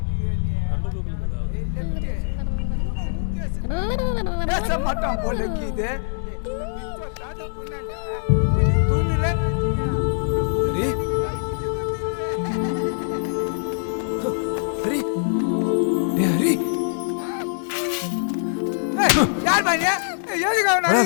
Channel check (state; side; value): silent; right; digital silence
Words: பேச மாட்டான் போலக்கு இது தூண்டுல ஹரி ஹரி யார் பாரு எதுக்கு அவன்